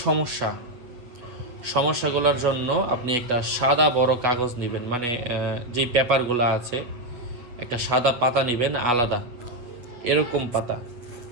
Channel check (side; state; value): left; late; 8.2 ms